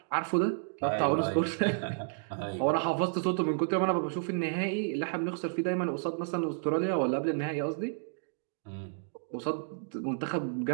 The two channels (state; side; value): silent; left; digital silence